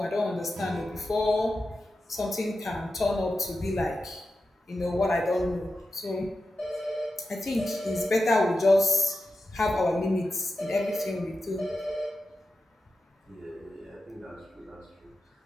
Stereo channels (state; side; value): normal; both; correlation 0.91